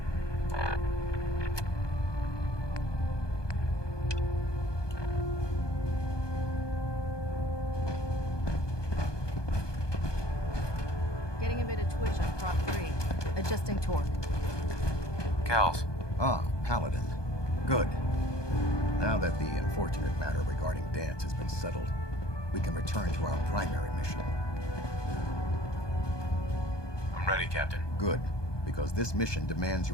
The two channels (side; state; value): right; late; 1.2 ms